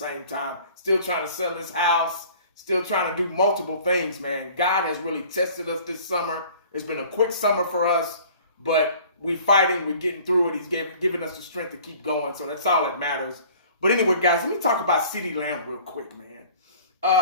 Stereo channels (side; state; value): both; inverted; correlation -0.49